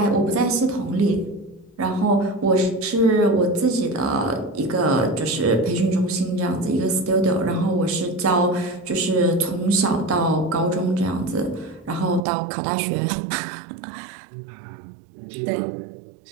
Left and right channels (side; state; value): left; drops out; at 12.2 s